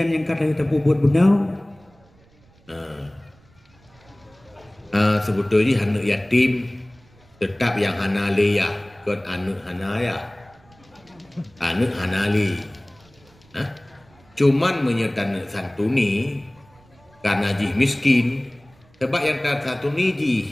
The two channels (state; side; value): noise; right; rumble, 30 dB below the sound